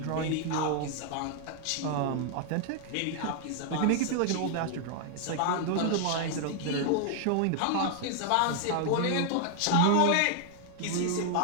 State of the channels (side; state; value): both; different; correlation 0.00